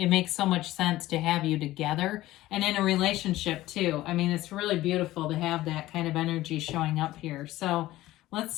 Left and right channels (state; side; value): quieter; right; 16.2 dB